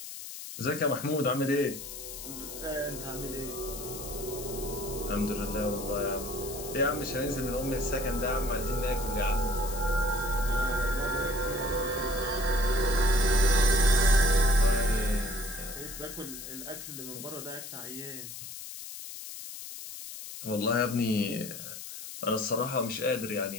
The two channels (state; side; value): noise; left; hiss, 10 dB below the sound